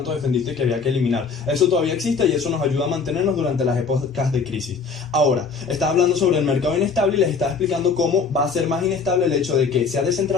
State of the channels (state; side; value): quieter; right; 5.2 dB